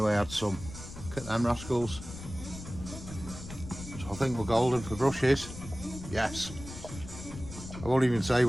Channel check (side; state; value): left; noise; rumble, 12 dB below the sound